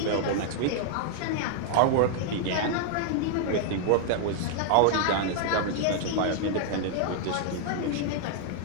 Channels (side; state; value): both; different; correlation -0.01